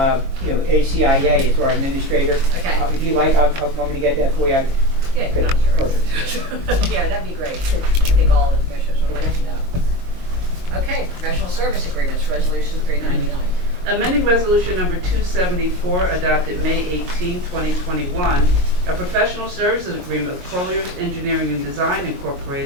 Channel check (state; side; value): late; left; 22 ms